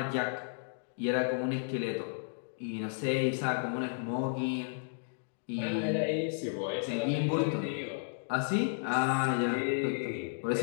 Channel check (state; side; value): silent; right; digital silence